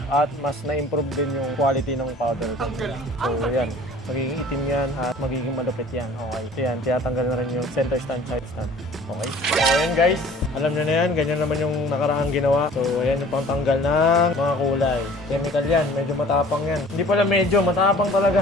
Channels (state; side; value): normal; both; correlation 0.49